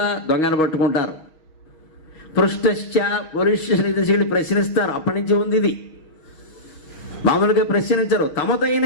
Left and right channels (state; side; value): late; right; 6.4 ms